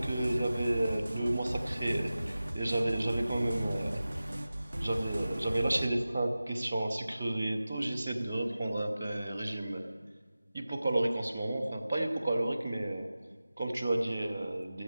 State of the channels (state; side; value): inverted; both; correlation -0.95